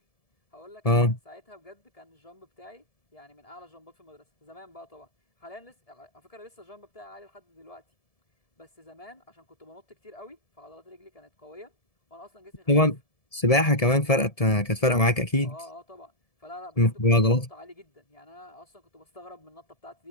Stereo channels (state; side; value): late; right; 1.7 ms